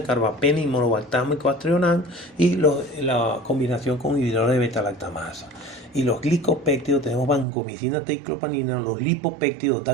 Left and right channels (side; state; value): left; drops out; at 7.5 s